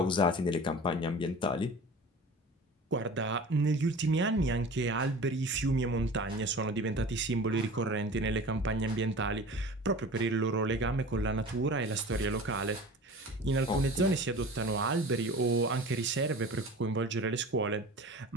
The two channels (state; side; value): normal; both; correlation 0.39